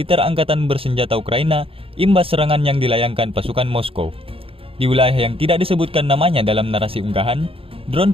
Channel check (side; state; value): left; late; 0.27 ms